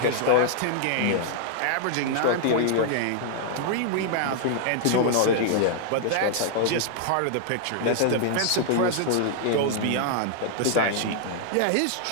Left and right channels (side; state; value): both; different; correlation -0.01